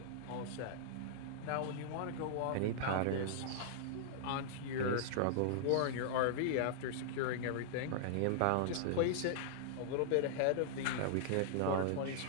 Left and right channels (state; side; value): different; both; correlation -0.01